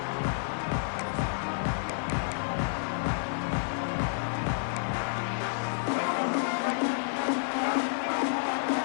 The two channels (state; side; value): silent; right; digital silence